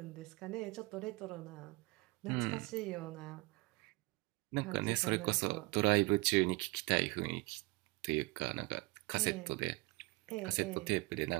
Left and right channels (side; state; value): left; quieter; 24.7 dB